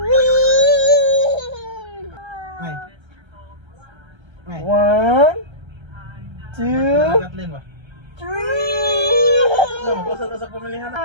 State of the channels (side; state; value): left; late; 1.3 ms